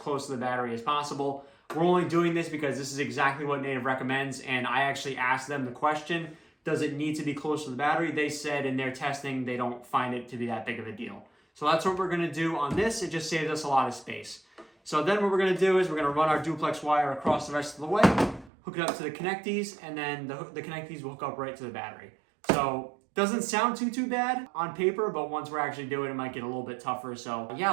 to the battery as possible. We're only doing this because this is exactly what Native recommends. And I actually asked them the question, does it need to be close to the battery? They said in their testing, they don't find it to be that big of a deal. So that's what we're gonna do on this. It just saves us a lot of space. So then what we're gonna do is we're gonna run our duplex wire across the rest of the way, hook it up to the connectees, and then the connectees will hook up right to the battery. So doesn't sound too bad on paper, but once we're actually doing it, it might get a little bit tougher. So yeah,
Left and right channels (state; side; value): drops out; left; at 18.5 s